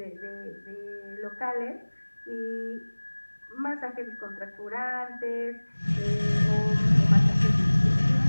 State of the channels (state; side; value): inverted; both; correlation -1.00